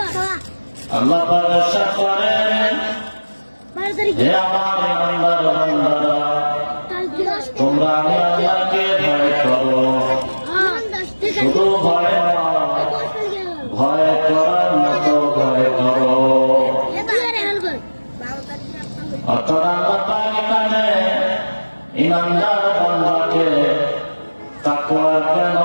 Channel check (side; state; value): both; inverted; correlation -1.00